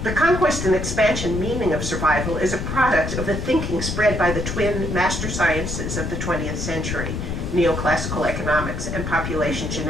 The conquest and expansion meaning of survival is a product of the thinking spread by the twin master sciences of the 20th century, neoclassical economics and population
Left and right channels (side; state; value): left; noise; rumble, 4 dB below the sound